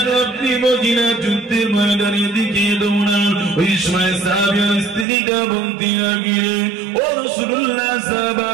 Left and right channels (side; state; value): left; drops out; at 5.1 s